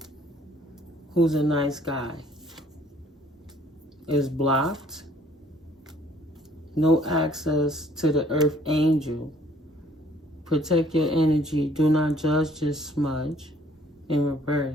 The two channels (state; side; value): normal; both; correlation 0.59